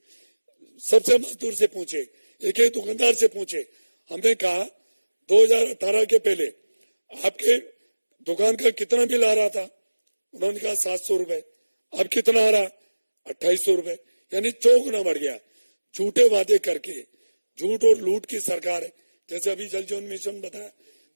सबसे मजदूर से पूछे, एक एक दुकानदार से पूछे। हमने कहा 2018 के पहले आपके दुकान का कितना बिल आ रहा था? उन्होंने कहा 700 रुपए। अब कितना आ रहा? 2800 रुपए, यानी 4 गुना बढ़ गया। झूठे वादे करके, झूठ और लूट की सरकार है। जैसे अभी जल जीवन मिशन बताया,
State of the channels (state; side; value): inverted; both; correlation -1.00